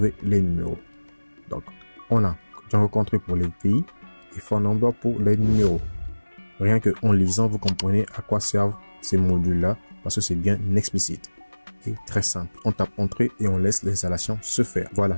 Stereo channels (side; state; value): both; inverted; correlation -1.00